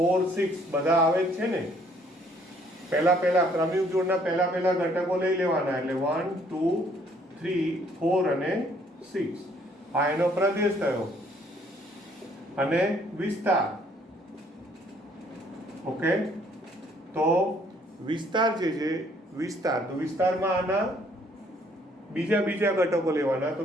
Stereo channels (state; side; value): normal; both; correlation 0.63